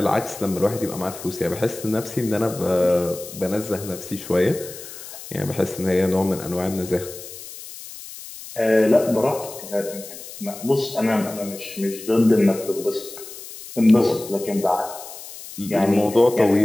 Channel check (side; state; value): left; noise; hiss, 14 dB below the sound